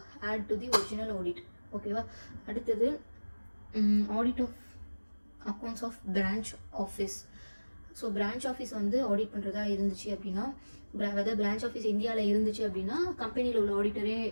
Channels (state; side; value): inverted; both; correlation -1.00